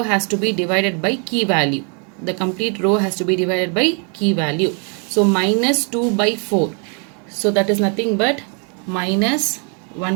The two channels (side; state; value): left; quieter; 38.4 dB